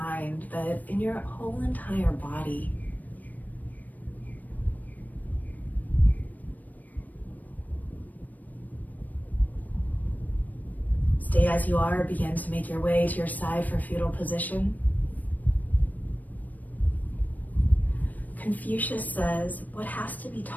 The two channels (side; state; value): right; late; 0.082 ms